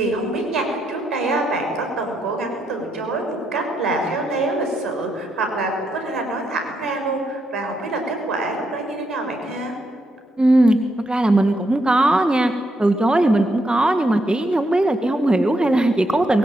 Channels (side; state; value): both; normal; correlation 0.79